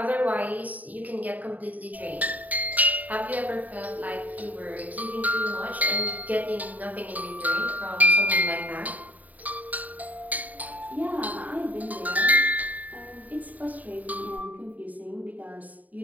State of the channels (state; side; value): late; left; 0.077 ms